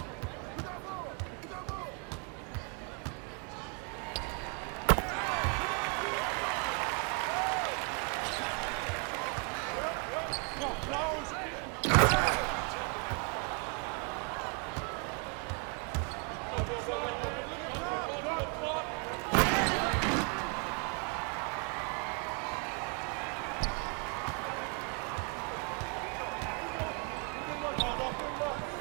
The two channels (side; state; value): left; quieter; 36.3 dB